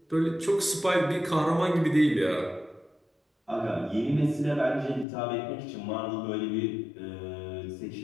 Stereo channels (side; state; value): right; drops out; at 5.1 s